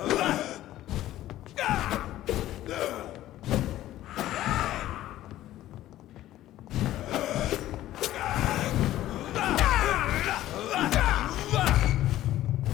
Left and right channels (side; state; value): right; quieter; 14.1 dB